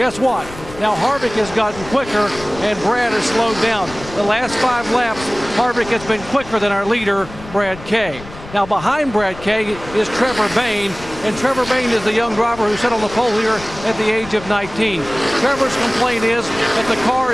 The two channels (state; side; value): noise; left; rumble, 16 dB below the sound